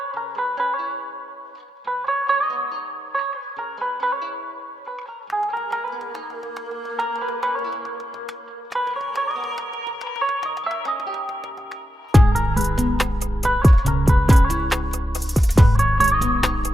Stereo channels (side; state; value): both; normal; correlation 0.87